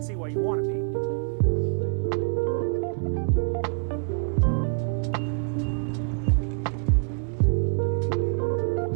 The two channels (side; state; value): left; silent; 61 dB below the other